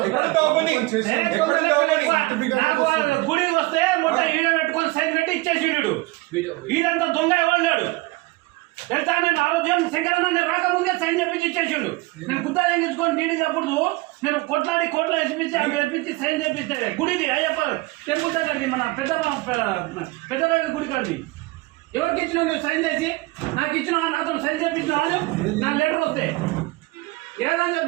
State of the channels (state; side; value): quieter; left; 21.9 dB